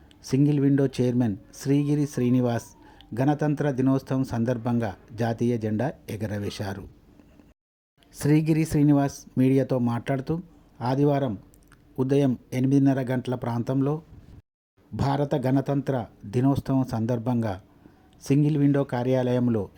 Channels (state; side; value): identical; both; correlation 1.00